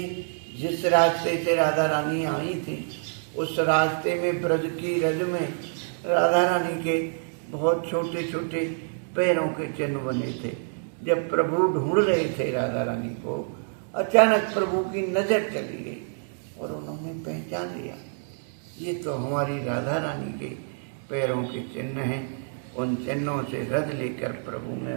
जिस रास्ते से राधा रानी आई थी उस रास्ते में ब्रज की रज में राधा रानी के बहुत छोटे छोटे पैरों के चिन्ह बने थे। जब प्रभु ढूंढ रहे थे राधा रानी को, अचानक प्रभु की नज़र चली गई और उन्होंने पहचान लिया ये तो हमारी राधा रानी के पैरों के चिन्ह हैं। उन चिन्हों से रज लेकर प्रभु ने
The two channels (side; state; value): left; silent; digital silence